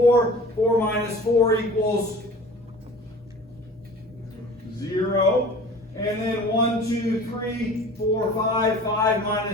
4 minus 4 equals 0. And then 1, 2, 3, 4, 5. 5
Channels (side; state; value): both; normal; correlation 0.43